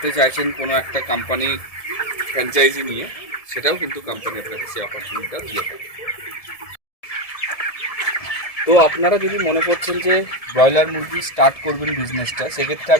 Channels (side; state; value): right; late; 1.7 ms